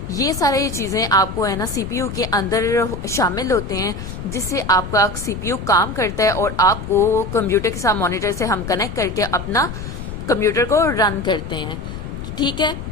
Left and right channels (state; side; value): noise; left; rumble, 8 dB below the sound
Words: ये सारी चीजें आपको है ना सीपीयू के अंदर शामिल होते हैं, जिससे आपका सीपीयू काम करता है और आपको कंप्यूटर के साथ मॉनिटर से हम कनेक्ट करके अपना कंप्यूटर को रन करते हैं, ठीक है।